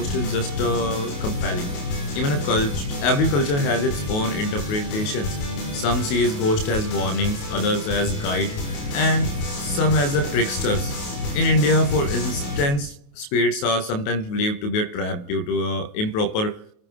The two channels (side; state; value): right; late; 28 ms